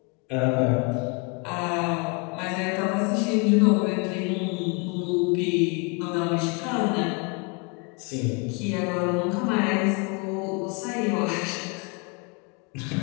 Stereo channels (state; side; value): quieter; right; 32.1 dB